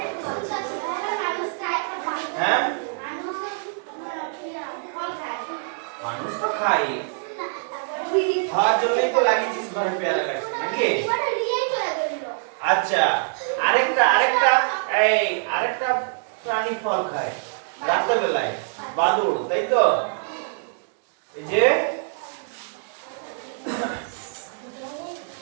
হ্যাঁ? মানুষ তো খাই, খাওয়ার জন্যই তো লাগিয়েছিস ঘরে পেয়ারা গাছ নাকি? আচ্ছা, আরেকটা আরেকটা এই আরেকটা প্রাণী ফল খায় রাতের বেলায়, বাদুড়, তাই তো? এই যে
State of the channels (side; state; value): left; silent; digital silence